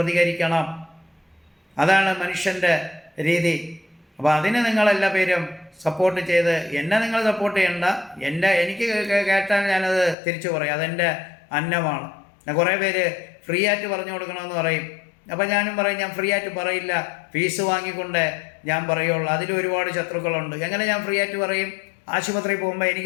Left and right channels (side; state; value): right; drops out; at 10.2 s